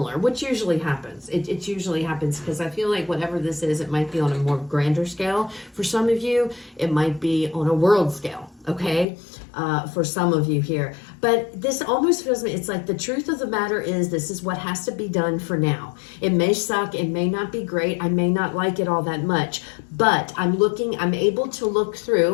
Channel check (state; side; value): drops out; right; at 9.1 s